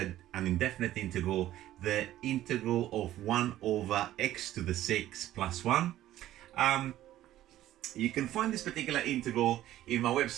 indefinite integral, the integral of 1 over x to the 6 plus 1. You can find this particular integral in my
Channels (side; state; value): left; quieter; 13.7 dB